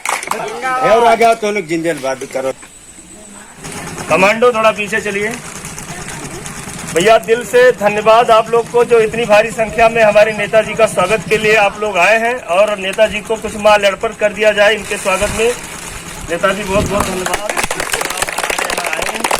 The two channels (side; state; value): both; identical; correlation 1.00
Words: और आ गया तो लोग जिंदाबाद करो। कमांडो थोड़ा पीछे चलिए। भैया दिल से धन्यवाद आप लोग को जो इतनी भारी संख्या में हमारे नेताजी का स्वागत के लिए आप लोग आए हैं और नेताजी को कुछ माल अर्पण कर दिया जाए इनके स्वागत में। नेताजी बहुत बहुत धन्यवाद।